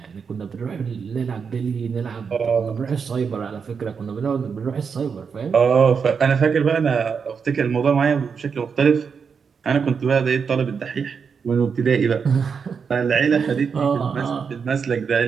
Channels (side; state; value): left; quieter; 6.1 dB